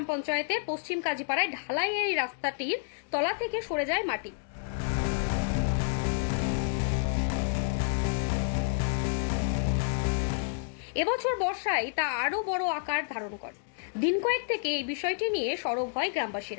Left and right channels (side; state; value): right; silent; digital silence